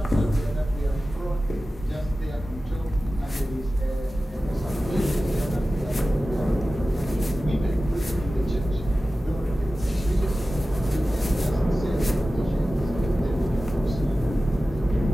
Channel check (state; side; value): normal; both; correlation 0.95